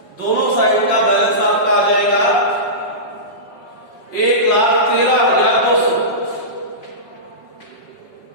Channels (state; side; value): late; right; 5.3 ms